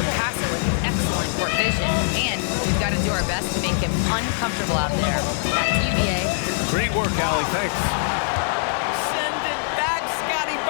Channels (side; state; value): right; silent; digital silence